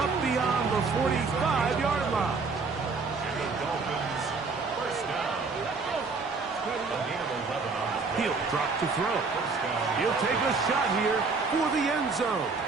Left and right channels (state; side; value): quieter; left; 4.4 dB